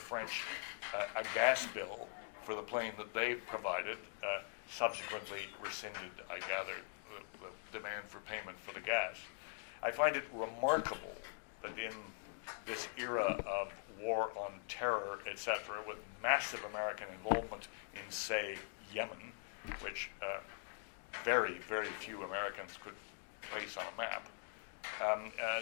a gas bill for the plane that they provided, subsequently rescinded, I gather, the demand for payment for the gas. I find it remarkable that in this era of war on terror, etc., with massive American involvement in, say, Yemen, which very, very few Americans could place on a map,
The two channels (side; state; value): right; silent; digital silence